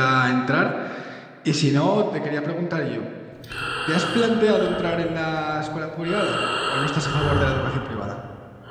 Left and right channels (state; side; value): identical; both; correlation 1.00